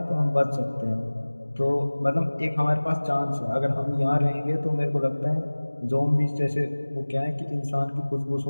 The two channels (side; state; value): both; inverted; correlation -1.00